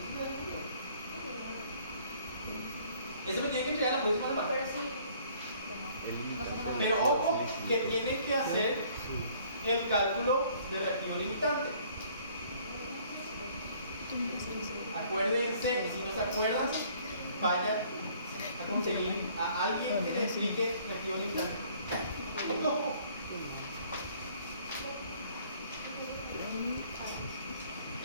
Ese me tiene que entregar la próxima semana. Pero sí. Pero ojo, que tienen que hacer el cálculo de reactivo limitante. Acuérdense, y si no se acuerdan, vayan a conseguir a alguien que les explique reactivo limitante. No.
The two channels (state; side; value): inverted; both; correlation -0.58